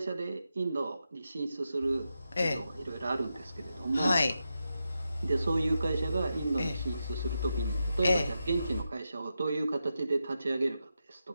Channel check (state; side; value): inverted; both; correlation -0.87